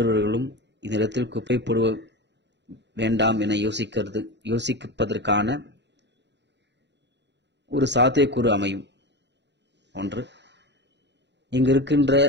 இந்த இடத்தில் குப்பை போடுவ வேண்டாம் என யோசிப்பதற்கான ஒரு சாத்தியக்கூறு அமையும். ஒன்று, இங்கு இருக்கின்ற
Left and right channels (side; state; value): left; late; 0.51 ms